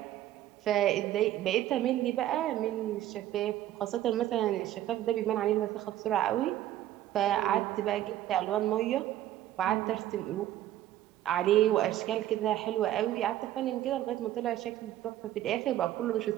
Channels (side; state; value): left; quieter; 13.2 dB